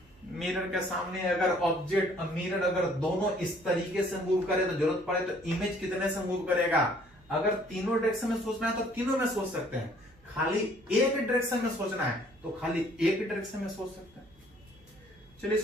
मिरर के सामने अगर ऑब्जेक्ट मिरर अगर दोनों इस तरीके से मूव करे तो जरूरत पड़े तो इमेज कितने से मूव करेगा। अगर तीनों डायरेक्शन में सोचना है तो तीनों में सोच सकते हैं, खाली एक डायरेक्शन में सोचना है तो खाली एक डायरेक्शन में सोच सकते हैं। चलिए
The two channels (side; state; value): right; noise; hum, 28 dB below the sound